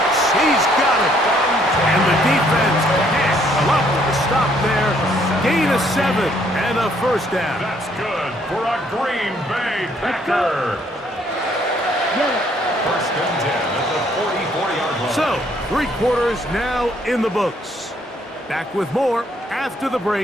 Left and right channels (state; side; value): normal; both; correlation 0.66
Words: He's got it. And the defense can't come up with a stop there. Gain of 7 and a first down. That's good for a Green Bay Packer. Yellow. First and 10 at the 40-yard line. So, 3 quarters now in the books. Back with more after the